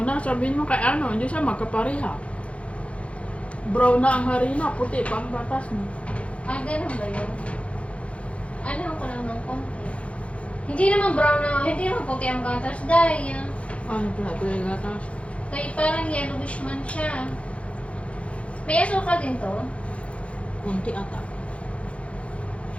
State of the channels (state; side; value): late; right; 0.062 ms